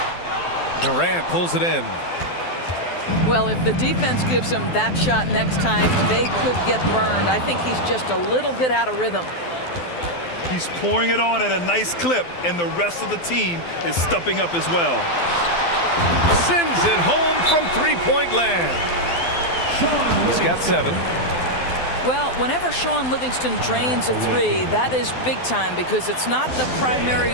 Durant pulls it in. Well, if the defense gives him that shot next time, they could get burned. I think he's just a little bit out of rhythm. He's pouring it on at a nice clip, and the rest of the team is stepping up as well. Sends it home from three-point land. He's got 7. Well, whenever Sean Livingston drains a 3, that is big time because it's not the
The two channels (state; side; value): late; right; 12 ms